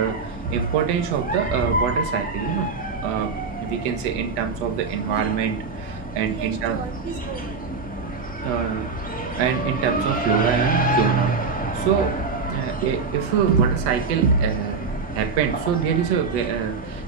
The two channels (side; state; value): left; quieter; 5.0 dB